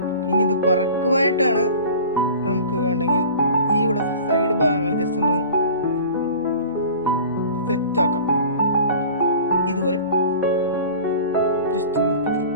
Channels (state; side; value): inverted; both; correlation -0.41